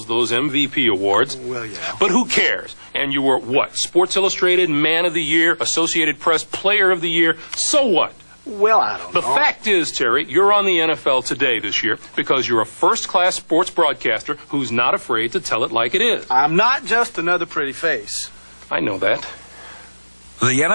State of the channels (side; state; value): both; inverted; correlation -1.00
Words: those MVP awards. Well, yeah. But who cares? And you were, what, Sports Illustrated Man of the Year, Associated Press Player of the Year. So what? Well, I don't know. The fact is, Terry, you're on the NFL Today this year because you're a first-class sports broadcaster who's not afraid to tell it like it is. I'm not just another pretty face. I know that. The